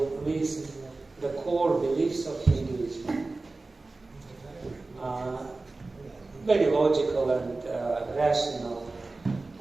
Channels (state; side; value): quieter; left; 3.4 dB